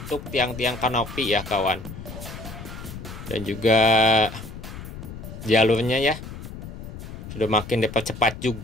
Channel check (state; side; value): noise; left; rumble, 11 dB below the sound